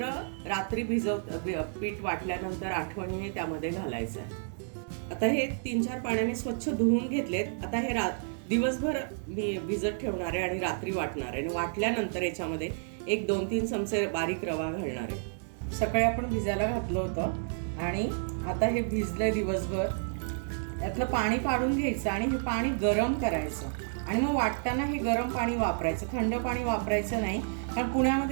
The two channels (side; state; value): left; silent; digital silence